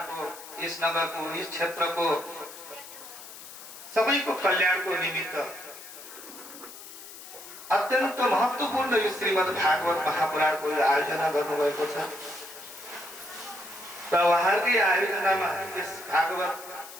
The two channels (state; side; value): noise; left; hiss, 15 dB below the sound